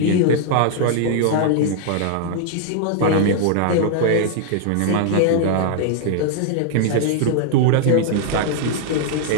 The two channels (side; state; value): both; different; correlation -0.01